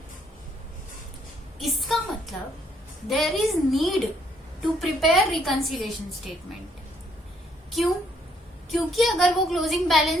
इसका मतलब there is need to prepare reconciliation statement. क्यों? क्योंकि अगर वो क्लोजिंग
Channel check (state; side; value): normal; both; correlation 0.69